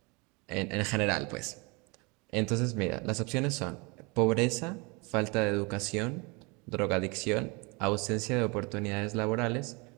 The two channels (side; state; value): left; quieter; 28.8 dB